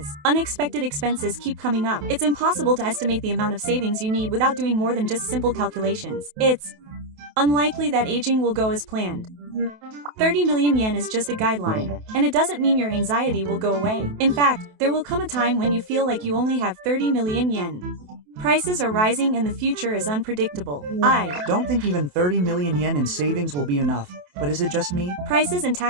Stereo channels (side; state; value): left; late; 28 ms